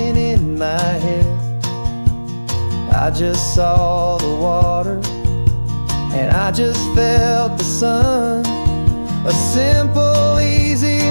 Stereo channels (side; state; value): both; inverted; correlation -1.00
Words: in my head. I just saw the water, and I just felt the sun. A simple, easy